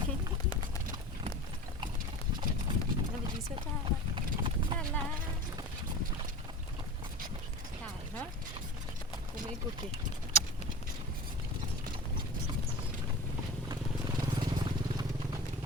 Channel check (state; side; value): normal; both; correlation 0.32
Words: ီစတာလာလာနော်ကိုမေကိုကေ